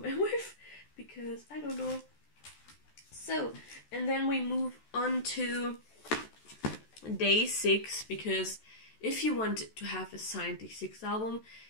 M-Wave because I don't know. So, and then we move on to day 6, because if you want to have a signed day 6 album,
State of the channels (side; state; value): right; late; 14 ms